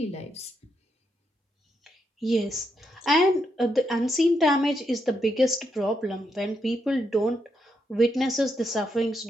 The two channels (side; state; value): both; normal; correlation 0.80